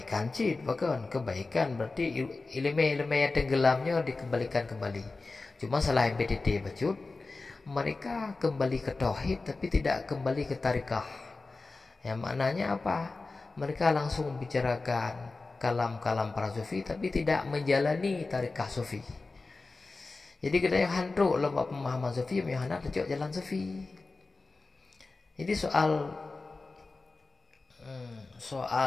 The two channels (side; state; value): right; quieter; 3.7 dB